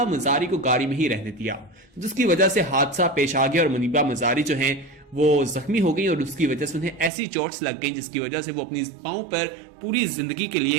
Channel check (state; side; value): drops out; left; at 7.1 s